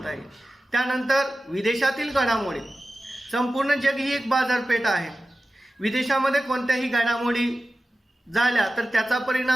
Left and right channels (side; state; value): both; normal; correlation 0.94